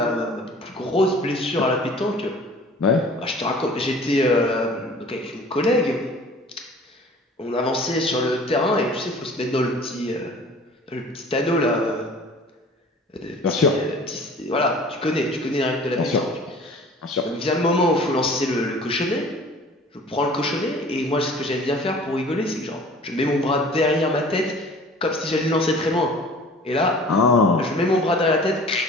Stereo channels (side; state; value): both; normal; correlation 0.47